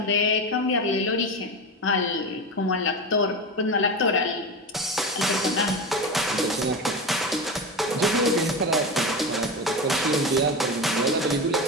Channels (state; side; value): normal; both; correlation 0.22